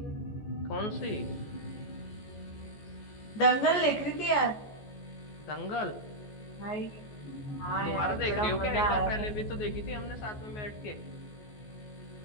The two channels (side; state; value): right; late; 14 ms